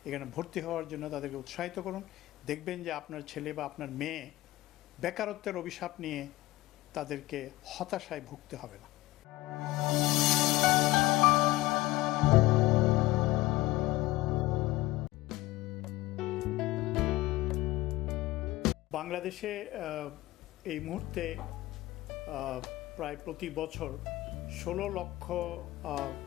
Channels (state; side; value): quieter; right; 18.2 dB